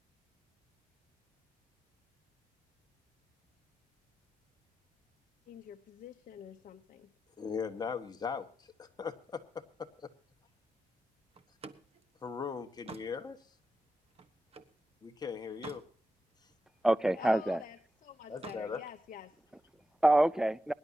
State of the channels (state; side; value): normal; both; correlation 0.90